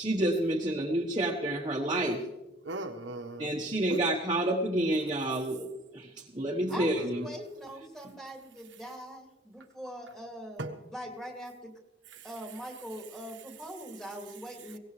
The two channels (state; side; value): normal; both; correlation 0.54